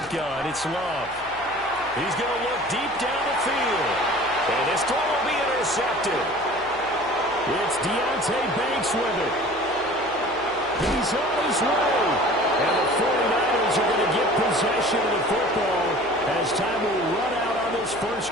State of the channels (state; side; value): noise; left; hum, 23 dB below the sound